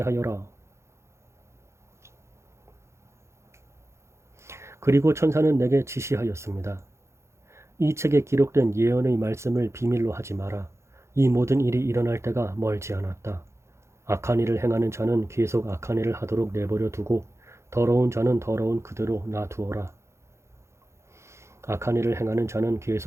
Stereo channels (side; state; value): left; late; 0.13 ms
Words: 그리고 천사는 내게 지시하였습니다. 이 책에 기록된 예언의 말씀을 비밀로 하지 마라. 이 모든 일이 일어날 때가 멀지 않았다. 악한 일을 행하는 자는 계속 악한 일을 하도록 내버려 두고 더러운 자는 더러운 그대로 놔두어라. 악한 일을 행하는 자는